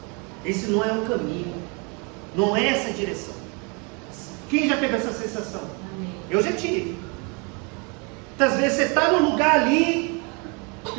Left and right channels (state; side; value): quieter; left; 32.8 dB